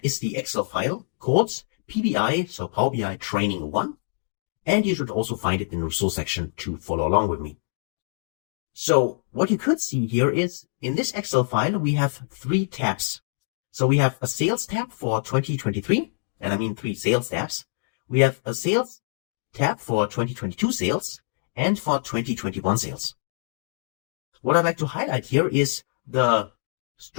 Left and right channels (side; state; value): right; silent; digital silence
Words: is the Excel file called PBI, so Power BI Training 1. And you should also find it in the resource section to follow along with me. So what you could see here is in this Excel file, we have 3 tabs. So we have a sales tab for 2023, and I mean 3 sales tabs. We have a sales tab for 2022 sales and for 2021 sales. What I'd like to highlight here is the